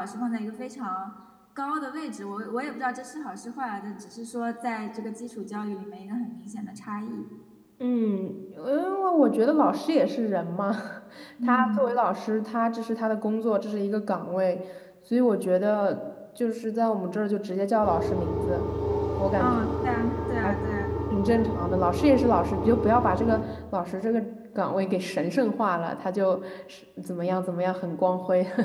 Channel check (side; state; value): both; identical; correlation 1.00